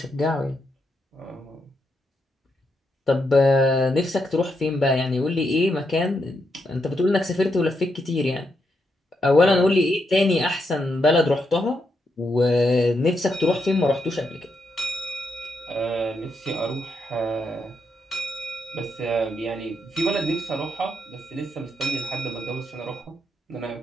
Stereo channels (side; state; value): both; normal; correlation 0.81